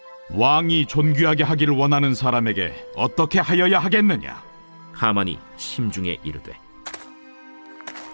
왕이 존귀하게 하기를 원하는 사람에게 어떻게 하여야 하겠느냐? 하만이 심중에 이르되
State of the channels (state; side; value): inverted; both; correlation -1.00